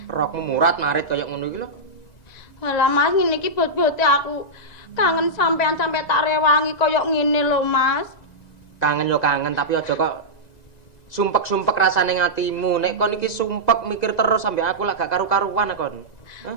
rokmu murat marit kaya ngono iki lho. Walah Mas, ngene iki bot-bote aku kangen sampean sampe tak rewangi kaya ngene lho Mas. Kangen yo kangen tapi aja kok sumpek-sumpek rasane ngatimu. Nek kon iki sumpek mikir terus sampe aku lak gak karu-karuan kon.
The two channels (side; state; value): right; late; 1.9 ms